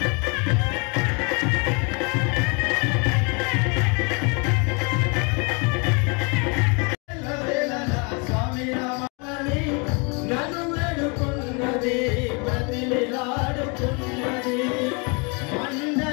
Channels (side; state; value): right; quieter; 32.5 dB